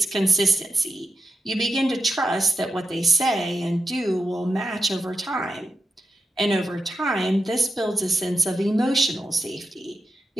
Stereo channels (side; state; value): both; normal; correlation 0.87